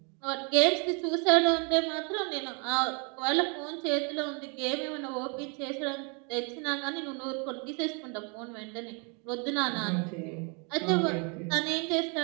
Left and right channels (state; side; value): quieter; left; 33.8 dB